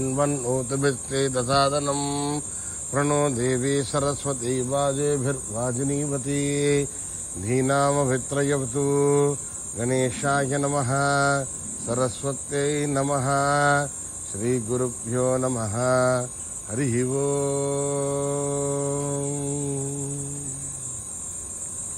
ప్రణో దేవీ సరస్వతీ వాజేభిర్వాజినీవతి. ధీనామభిత్రయవతు. గణేశాయ నమః. సరస్వత్యై నమః. శ్రీ గురుభ్యో నమః. హరి ఓం.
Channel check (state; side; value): identical; both; correlation 1.00